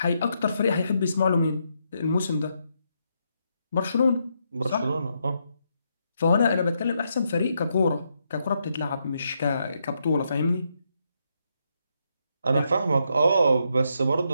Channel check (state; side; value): inverted; both; correlation -0.79